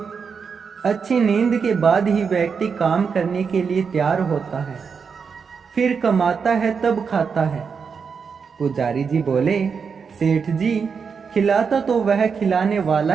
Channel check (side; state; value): left; quieter; 5.9 dB